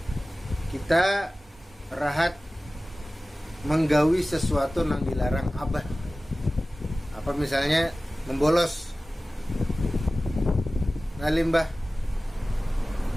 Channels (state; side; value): normal; both; correlation 0.97